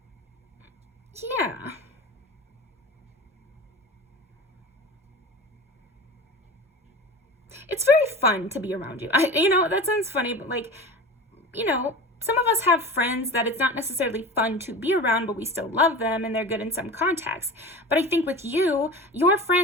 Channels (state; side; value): normal; both; correlation 0.33